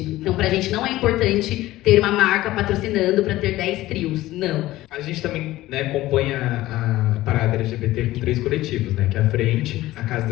Então pra gente não é importante ter uma marca patrocinando para ter 10 trios, não. A gente também, né, compõe a parada LGBT com 3 coletivos, né, que é a Frente, a Casa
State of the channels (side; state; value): right; quieter; 16.5 dB